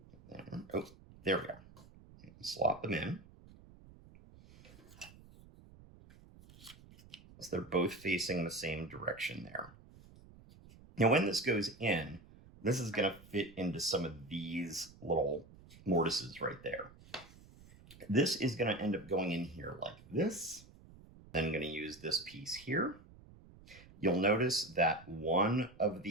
Oh, there we go. Slot them in. So they're both facing the same direction there. Now, when this goes in, this is going to fit into some of these little mortises right there. This is going to end up going in here like this. Then I'm going to use this piece here. You'll notice that one of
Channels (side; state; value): right; noise; rumble, 22 dB below the sound